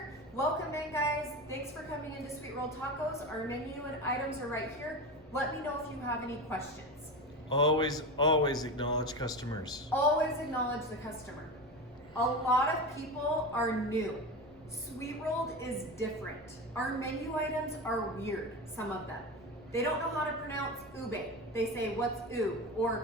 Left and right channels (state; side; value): normal; both; correlation 0.24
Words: welcome in, guys. Thanks for coming into Sweet Rolled Tacos. Our menu and items are right here. Let me know if you have any questions. Always acknowledge customers. Always acknowledge the customer. A lot of people are new. Sweet Rolled is different. Our menu items are weird, some of them. They don't know how to pronounce ube. They say, what's ube?